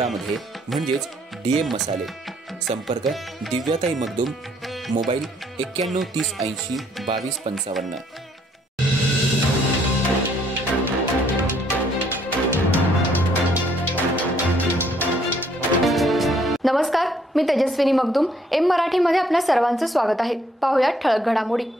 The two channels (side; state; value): both; normal; correlation 0.66